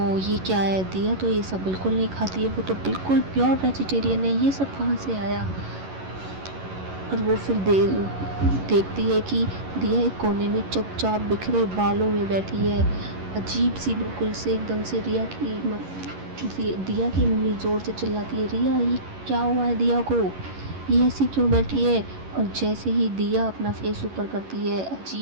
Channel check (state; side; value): late; left; 11 ms